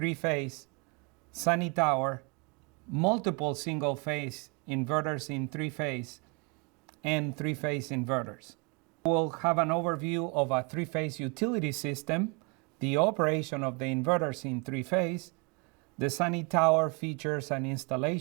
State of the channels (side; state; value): left; quieter; 31.9 dB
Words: sunny tower, multiple single-phase inverters in three-phase, and three-phase inverters. We'll have an overview of a three-phase utility system, the operation of the inverters in three-phase, the sunny tower features and